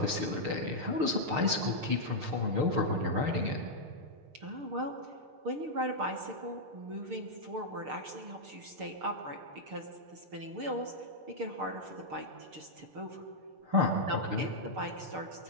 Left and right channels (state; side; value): late; left; 6.6 ms